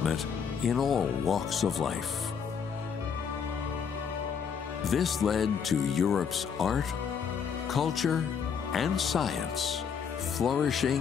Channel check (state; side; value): quieter; right; 6.8 dB